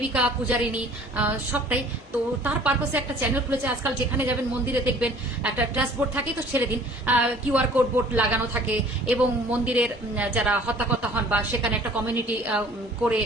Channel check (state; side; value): normal; both; correlation 0.51